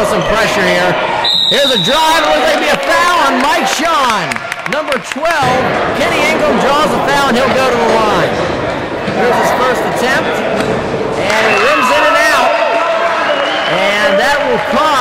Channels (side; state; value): both; identical; correlation 1.00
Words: some pressure here. Here's a drive. It looks like it'll be a foul on Mike Shawn. Number 12, Kenny Ingram draws a foul, and he'll go to the line. Here's his first attempt, and it rims in and out. And that will